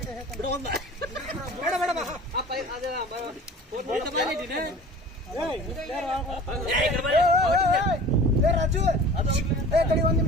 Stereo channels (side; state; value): both; normal; correlation 0.42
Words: ರಾಜು ಕಡಿ ಒಂದ್